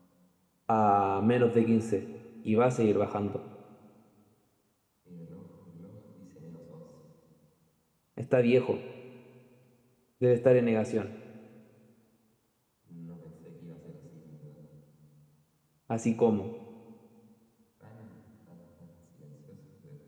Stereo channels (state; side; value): identical; both; correlation 1.00